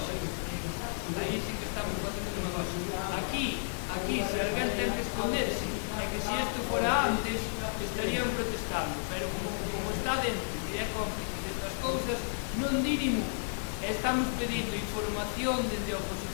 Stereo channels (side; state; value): right; silent; digital silence